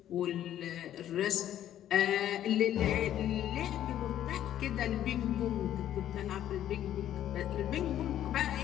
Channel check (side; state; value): right; quieter; 11.5 dB